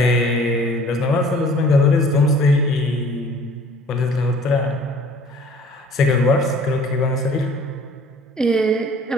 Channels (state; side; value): normal; both; correlation 0.51